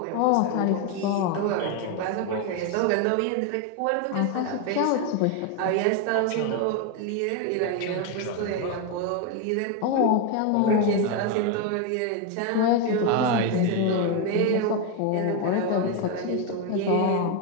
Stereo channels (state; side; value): different; both; correlation 0.02